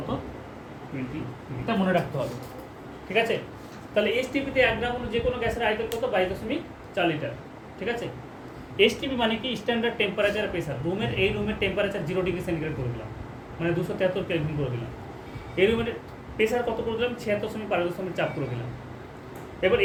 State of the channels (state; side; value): identical; both; correlation 1.00